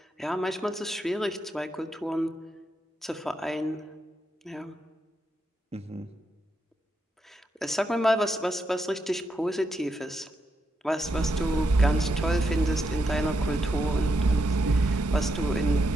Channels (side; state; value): both; normal; correlation 0.82